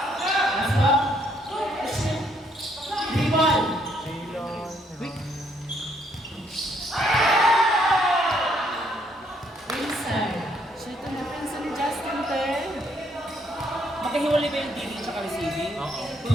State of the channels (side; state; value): both; normal; correlation 0.70